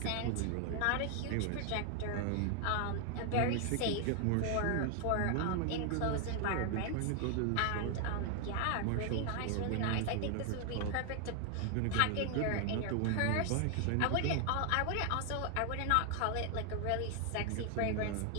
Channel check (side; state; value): both; different; correlation 0.00